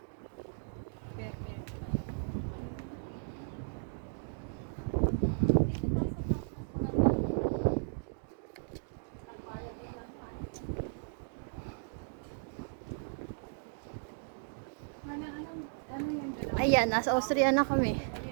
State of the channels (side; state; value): left; silent; digital silence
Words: perfect. Ayan, nasa Austria na kami.